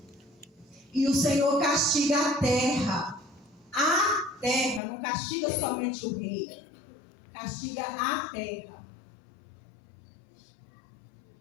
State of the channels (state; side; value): drops out; right; at 4.8 s